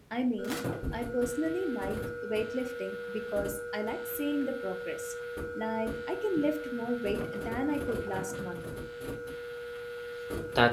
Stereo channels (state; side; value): identical; both; correlation 1.00